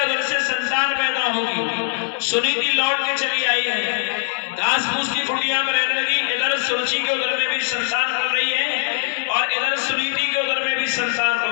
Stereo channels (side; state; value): right; silent; 60 dB below the other